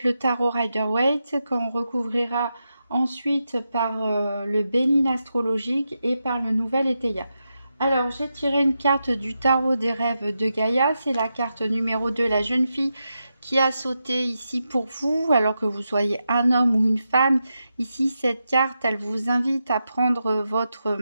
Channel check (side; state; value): both; inverted; correlation -0.88